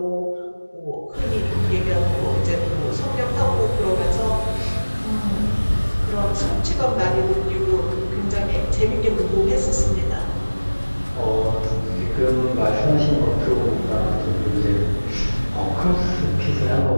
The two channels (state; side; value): inverted; both; correlation -1.00